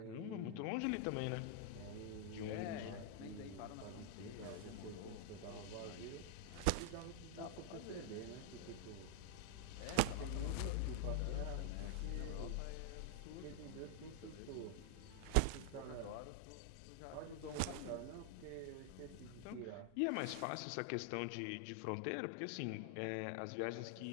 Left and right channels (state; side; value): different; both; correlation 0.00